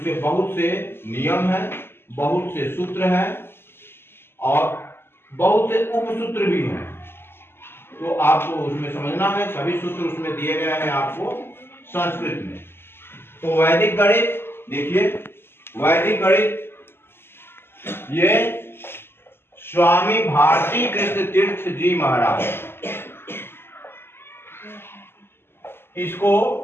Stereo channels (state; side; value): late; right; 0.11 ms